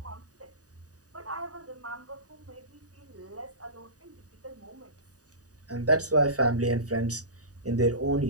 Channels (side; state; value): left; late; 0.67 ms